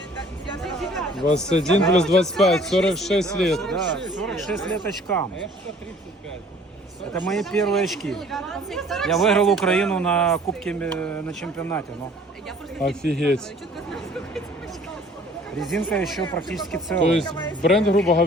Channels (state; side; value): normal; both; correlation 0.54